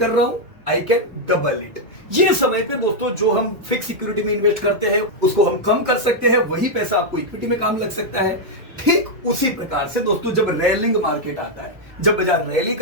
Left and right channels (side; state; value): both; normal; correlation -0.01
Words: रहा हूं, आई कैन डबल इट। ये समय पे दोस्तों जो हम फिक्स सिक्योरिटी में इन्वेस्ट करते हैं उसको हम कम कर सकते हैं, वही पैसा आपको इक्विटी में काम लग सकता है। ठीक उसी प्रकार से दोस्तों जब रैलिंग मार्केट आता है, जब बाजार रैली